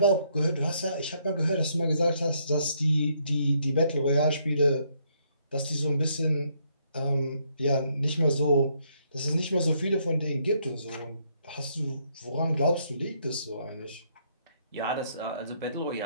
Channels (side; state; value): both; inverted; correlation -0.71